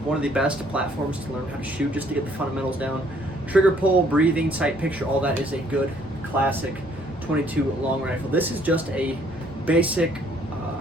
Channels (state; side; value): normal; both; correlation 0.63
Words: one of the best platforms to learn how to shoot, just to get the fundamentals down. Trigger pull, breathing, sight picture, all that is a good classic 22 long rifle. This is just a basic